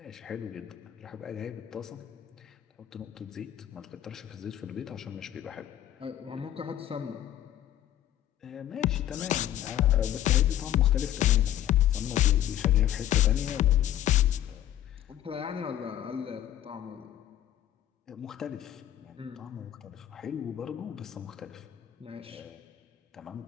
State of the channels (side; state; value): right; quieter; 12.0 dB